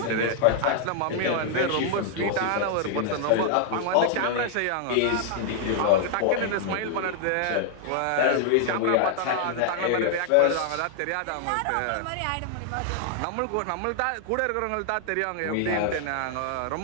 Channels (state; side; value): different; both; correlation 0.00